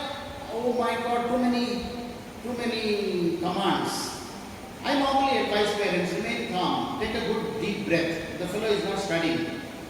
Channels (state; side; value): identical; both; correlation 1.00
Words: Oh my God, too many commands. I normally advise parents, remain calm, take a good deep breath. The fellow is not studying,